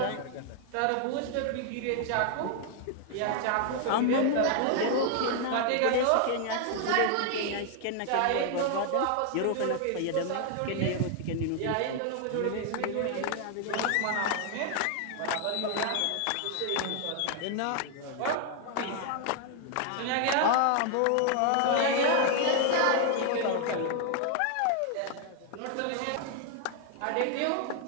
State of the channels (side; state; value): both; different; correlation 0.00